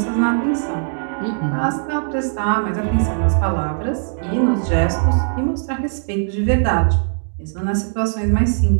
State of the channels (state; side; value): silent; left; digital silence